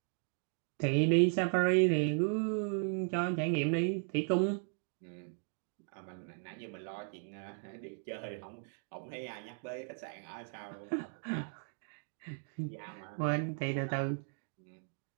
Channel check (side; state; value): left; silent; 53 dB below the other